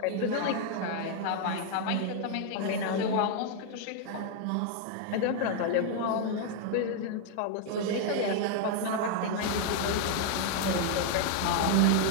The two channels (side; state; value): both; different; correlation 0.00